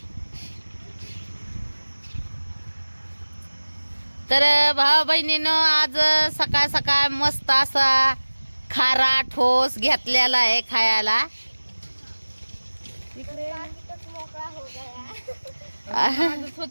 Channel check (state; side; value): inverted; both; correlation -1.00